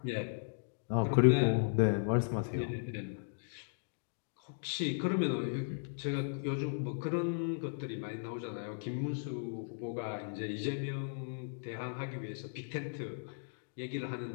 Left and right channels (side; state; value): right; silent; digital silence